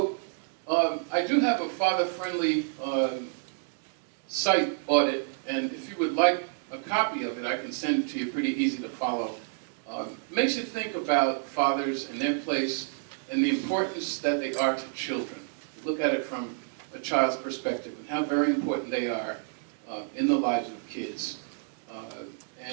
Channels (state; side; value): silent; left; digital silence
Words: I do have a father-friendly site audit, and if you would like a copy of it, I can send it to you, pretty easy to follow. Makes you think about fathers and their place and the importance that they are to children. Look at it from a child's perspective and how very important they are in the lives of kids.